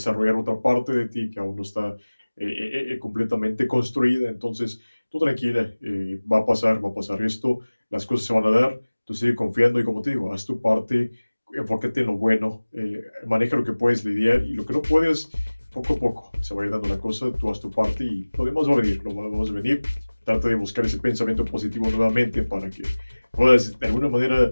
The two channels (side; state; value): both; inverted; correlation -1.00